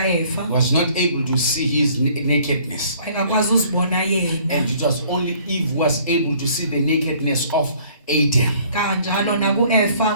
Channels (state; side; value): inverted; both; correlation -0.57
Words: Was not able to see his nakedness. Engakwazi uzibona yena. And it was only Eve was able to see the nakedness of Adam. Kanjalo nakuEva